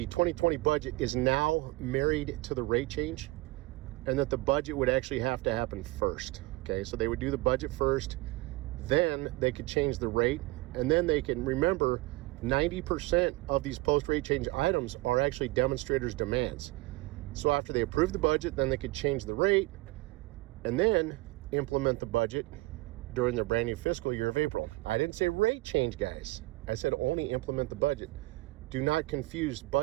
budget is now married to the rate change, and that the budget would actually have to happen first. Okay, so they would do the budget first, then they could change the rate, and then they can remember 90% of these post-rate change items are actually demonstrators' demands. So after they approve the budget, then they could change the rate and then implement the budget during their brand new fiscal year of April. I didn't say rate change, guys. I said only implement the budget. Do not confuse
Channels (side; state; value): left; quieter; 21.2 dB